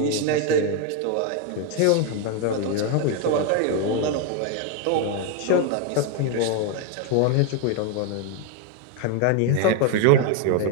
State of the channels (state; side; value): different; both; correlation 0.01